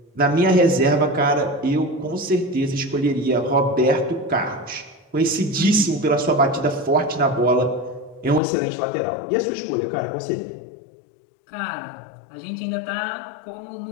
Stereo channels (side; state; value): right; drops out; at 8.4 s